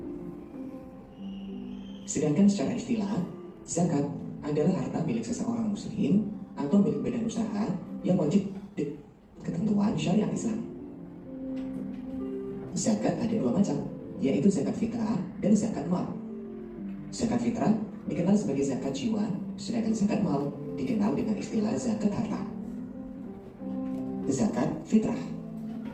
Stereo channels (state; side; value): identical; both; correlation 1.00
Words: Sedangkan secara istilah, zakat adalah harta milik seseorang muslim atau milik badan usaha yang wajib ketentuan syariat Islam. Zakat ada dua macam, yaitu zakat fitrah dan zakat mal. Zakat fitrah dikenal sebagai zakat jiwa, sedangkan zakat mal dikenal dengan istilah zakat harta. Zakat fitrah.